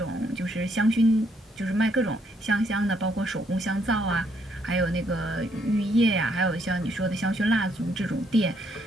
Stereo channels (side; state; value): both; normal; correlation 0.71